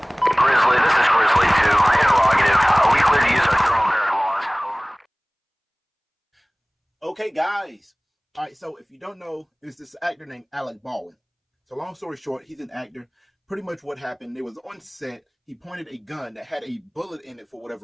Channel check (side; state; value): both; identical; correlation 1.00